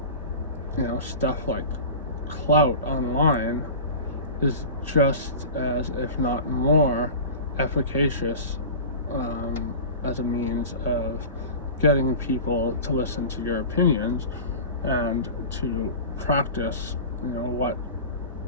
you know, stuff like clout online is just as, if not more, efficacious as a means of getting people to listen to your opinions and to practice, you know, what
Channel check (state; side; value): inverted; both; correlation -0.33